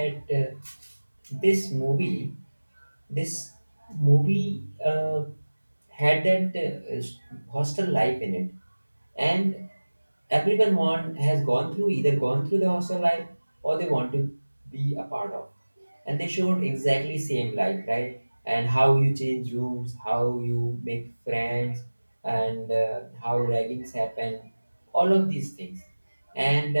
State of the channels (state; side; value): inverted; both; correlation -1.00